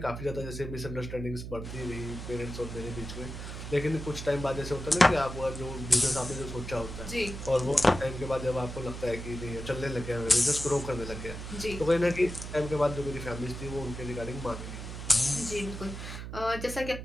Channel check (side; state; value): right; noise; hum, 8 dB below the sound